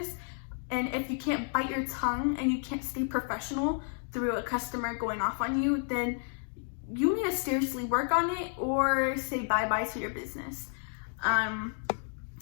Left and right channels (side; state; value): right; silent; 57 dB below the other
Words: and if you can't bite your tongue and you can't stay professional through a customer going off on you, then you need to seriously work on it or say bye-bye to your business.